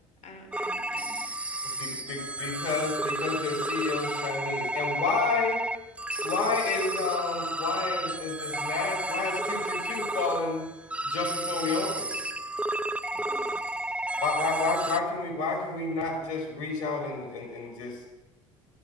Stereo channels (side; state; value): both; normal; correlation 0.36